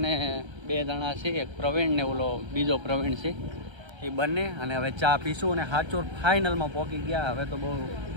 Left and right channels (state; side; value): late; left; 1.3 ms